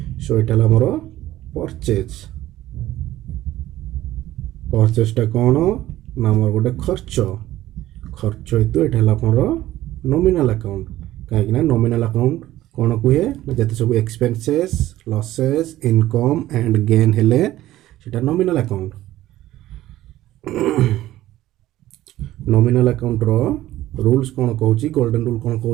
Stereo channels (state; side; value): quieter; left; 14.9 dB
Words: सो एटा हमर परचेज टा कोन ना हमर गोटे खर्च हेतु एटा हमर नॉमिनल अकाउंट काहे ना नॉमिनल अकाउंट कोन कुहे जते सब expenses losses income and gain हेले सेटा नॉमिनल अकाउंट नॉमिनल अकाउंट रो रूल्स कोन कहूची गोल्डन रूल कोन